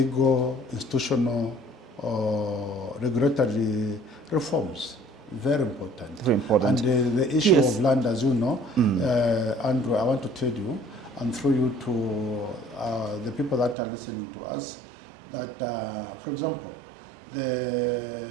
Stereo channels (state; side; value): drops out; left; at 13.8 s